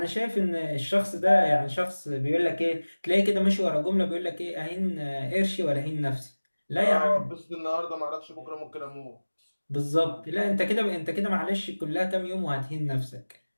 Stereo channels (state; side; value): inverted; both; correlation -1.00